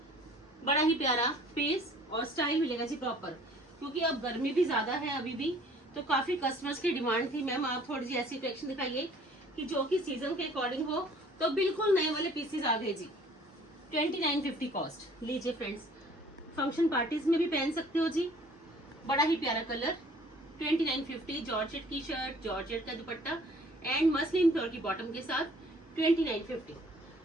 बड़ा ही प्यारा पीस और स्टाइल मिलेगा जी प्रॉपर, क्योंकि अब गर्मी भी ज्यादा है अभी भी, तो काफी कस्टमर्स की डिमांड थी मैम आप थोड़ी सी ऐसी कलेक्शन दिखाइए कि जो कि सीजन के अकॉर्डिंग हो। तो बिल्कुल नए वाले पीसेस आ गए जी। 2950 कॉस्ट। लीजिए फ्रेंड्स, फंक्शन पार्टीज में भी पहन सकते हो जी। बड़ा ही प्यारा कलर, 2950, जॉर्जेट की शर्ट, जॉर्जेट का दुपट्टा एंड मसलिन फ्लोर की बॉटम के साथ 2950।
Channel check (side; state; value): both; normal; correlation 0.54